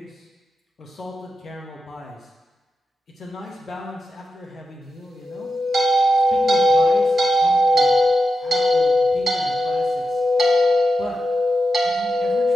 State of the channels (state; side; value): normal; both; correlation 0.89